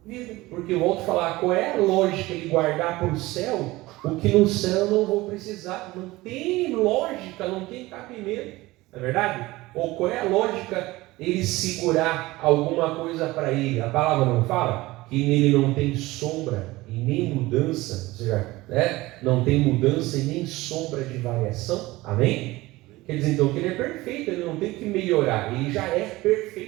vida. Porque eu volto a falar, qual é a lógica de guardar para o céu o que no céu eu não vou precisar? Não tem lógica, não tem cabimento, não é verdade? Ou qual é a lógica ele segurar alguma coisa para ele? A palavra não fala que nele não tem sombra e nem mudança, ou seja, né? Não tem mudança e nem sombra de variação, amém? Quer dizer então que ele é perfeito, ele não tem que melhorar, ele já é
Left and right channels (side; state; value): left; quieter; 19.5 dB